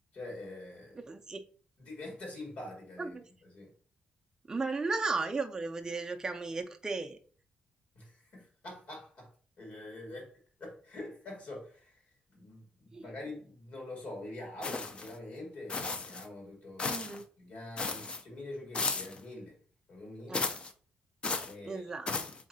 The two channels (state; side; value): normal; both; correlation 0.51